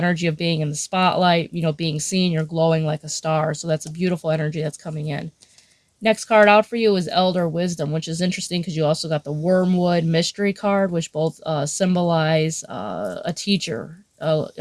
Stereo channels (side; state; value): both; identical; correlation 1.00